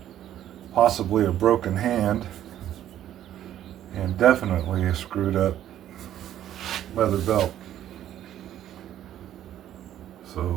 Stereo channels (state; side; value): quieter; left; 11.7 dB